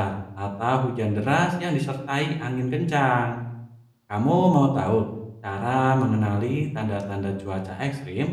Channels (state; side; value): identical; both; correlation 1.00